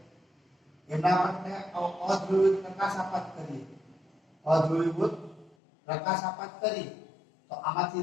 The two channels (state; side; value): drops out; right; at 5.6 s